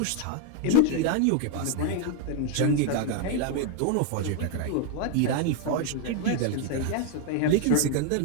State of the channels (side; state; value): both; different; correlation 0.01